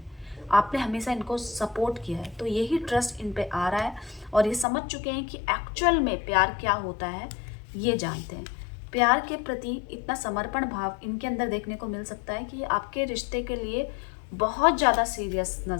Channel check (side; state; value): right; drops out; at 4.7 s